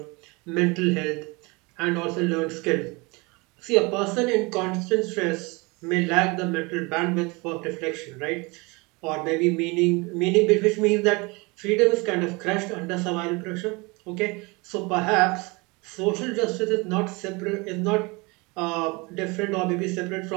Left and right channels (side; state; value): left; quieter; 26.7 dB